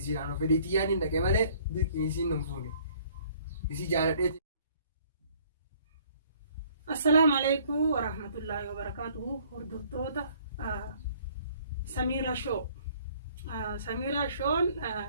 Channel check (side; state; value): both; inverted; correlation -0.58